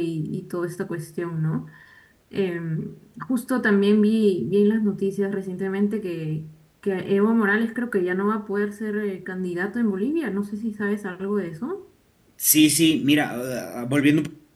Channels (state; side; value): identical; both; correlation 1.00